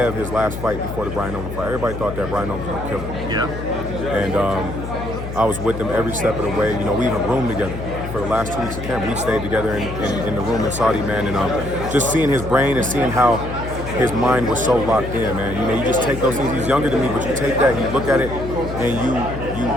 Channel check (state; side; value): noise; left; hum, 8 dB below the sound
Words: his last fight before the Brian Newman fight, everybody thought that Brian Newman was going to kill him. Yeah. And I was with him every step of the way. You know, we even roomed together for the last 2 weeks of camp. We stayed together in the room in Saudi, man. And just seeing his brain and seeing how his mind was so locked in, man. You know, you just take those things. He's younger than me, but you take that, you look at it, and